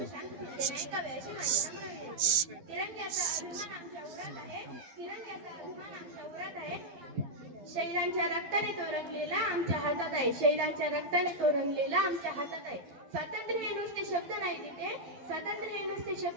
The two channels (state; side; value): late; left; 12 ms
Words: शैलांच्या रक्ताने तो रंगलेला आमच्या हातात आहे. शैलांच्या रक्ताने तो रंगलेला आमच्या हातात आहे. स्वातंत्र्य हे नुसते शब्द नाही तिथे, स्वातंत्र्य हे नुसते